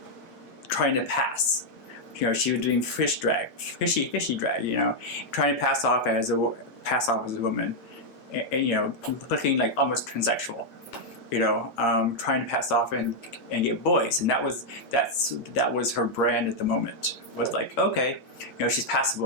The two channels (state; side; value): late; right; 8.6 ms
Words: trying to pass. You know, she was doing fishy drag. You know, trying to pass off as a woman, and you know, looking like almost transsexual. You know, trying to pass off and get boys, and that was her brand at the moment. Was like, okay, you know, she's